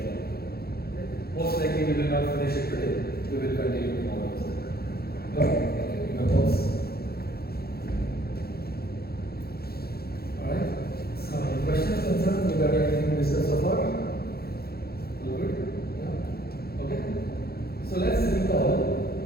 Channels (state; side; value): late; right; 0.45 ms